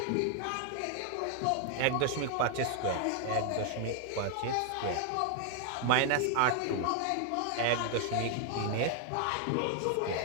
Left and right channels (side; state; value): both; different; correlation 0.00